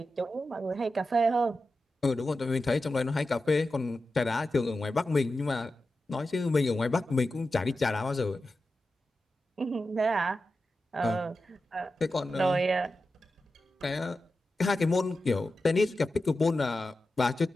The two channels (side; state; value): both; normal; correlation 0.91